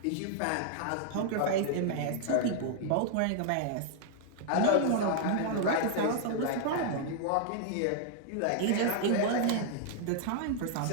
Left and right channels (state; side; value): different; both; correlation -0.01